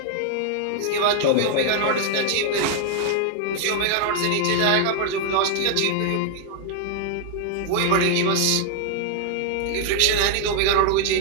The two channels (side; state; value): both; different; correlation 0.00